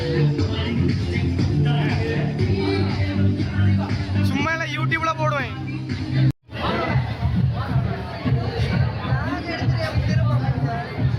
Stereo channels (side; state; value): both; identical; correlation 1.00